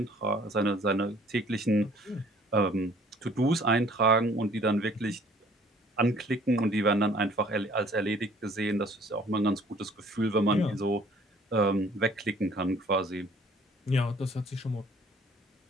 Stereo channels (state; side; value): normal; both; correlation 0.56